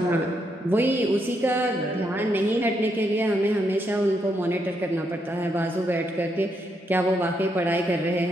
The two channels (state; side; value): normal; both; correlation 0.78